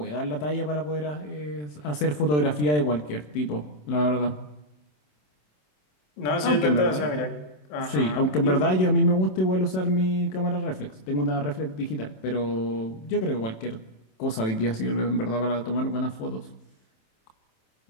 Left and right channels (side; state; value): right; late; 27 ms